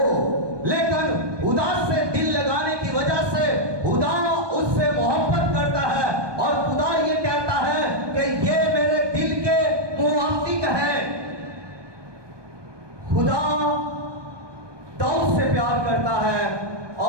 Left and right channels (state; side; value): late; left; 1.2 ms